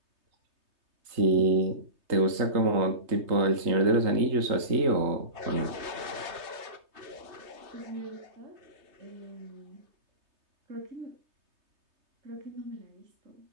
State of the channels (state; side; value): late; left; 3.2 ms